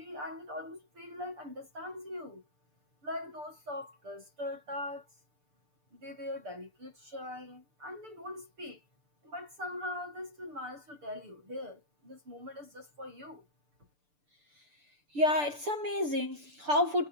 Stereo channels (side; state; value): left; late; 6.8 ms